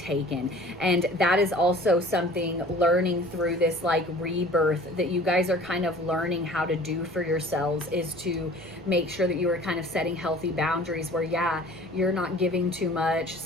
And that is also something learning through this like rebirth that you guys are kind of learning how to do for yourselves, is to make sure that you are kind of setting healthy boundaries where, yeah, yeah, you're not giving too much,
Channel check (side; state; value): left; noise; rumble, 30 dB below the sound